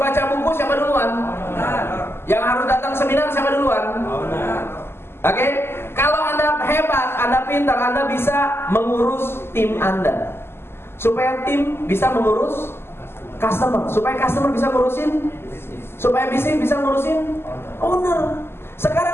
buku siapa duluan? Yang harus datang seminar siapa duluan? Oke? Kalau Anda hebat, Anda pintar, Anda bisa mengurus tim Anda. Supaya tim bisa mengurus customer, supaya customer bisa ngurusin, supaya bisnis bisa ngurusin owner.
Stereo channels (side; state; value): right; late; 0.12 ms